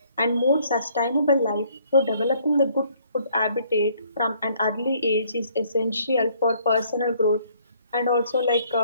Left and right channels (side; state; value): both; inverted; correlation -0.63